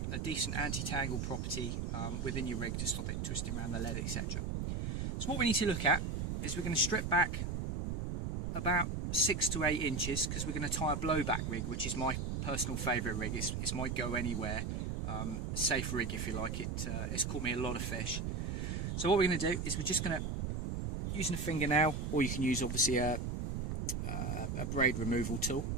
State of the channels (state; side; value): noise; right; rumble, 2 dB below the sound